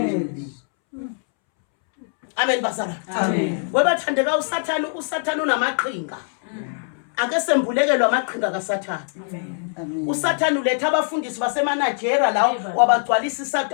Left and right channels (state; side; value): silent; right; 64 dB below the other